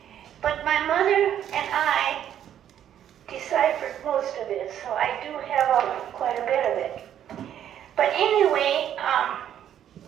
But my mother and I deciphered most of it, so I do have quite a bit of it. But anyway,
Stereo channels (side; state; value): left; quieter; 10.3 dB